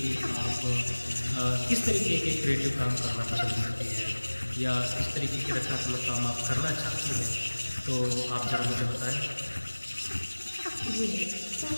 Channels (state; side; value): inverted; both; correlation -1.00